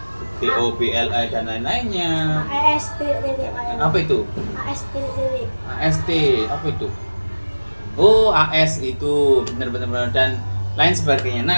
BOBLA dan lain-lainnya. AST. Apa itu? AST. AST, apa itu? Oh, AS itu benar-benar dan lain sebagainya.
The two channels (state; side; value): inverted; both; correlation -1.00